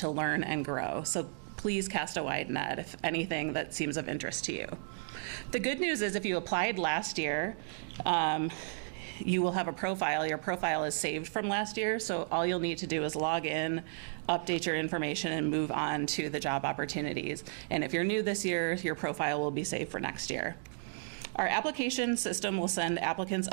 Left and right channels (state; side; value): silent; left; digital silence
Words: learn and grow. So please cast a wide net if anything that seems of interest to you. The good news is if you applied last year, you will have a profile. Your profile is saved from last year, so all you'll need to do is log in, update your information, and move on to the job opportunities. And if you're new this year, your profile will be saved for next year. Our application system will send applicants